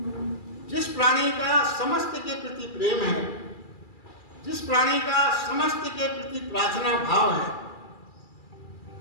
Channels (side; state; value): right; late; 2.3 ms